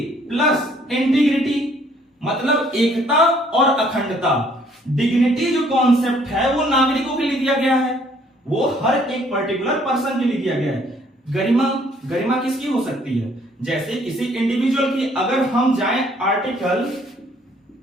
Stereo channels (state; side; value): normal; both; correlation 0.62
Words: प्लस इंटीग्रिटी, मतलब एकता और अखंडता। डिग्निटी जो कॉन्सेप्ट है वो नागरिकों के लिए दिया गया है, वो हर एक पर्टिकुलर पर्सन के लिए दिया गया है। गरिमा किसकी हो सकती है? जैसे किसी इंडिविजुअल की, अगर हम जाएं आर्टिकल